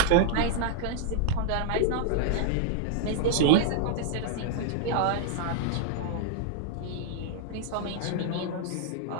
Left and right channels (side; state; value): both; different; correlation -0.01